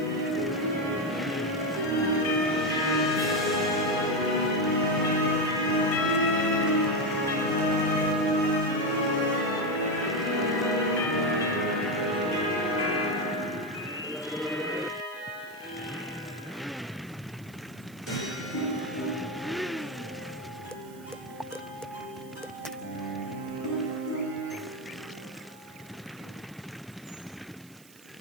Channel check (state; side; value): noise; right; hiss, 24 dB below the sound